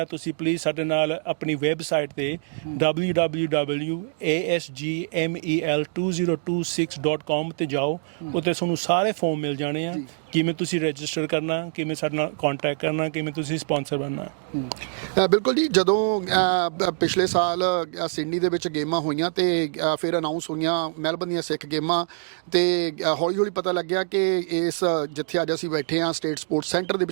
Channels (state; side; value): silent; left; digital silence